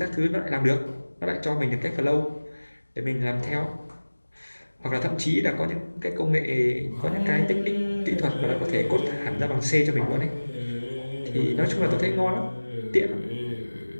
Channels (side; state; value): both; inverted; correlation -1.00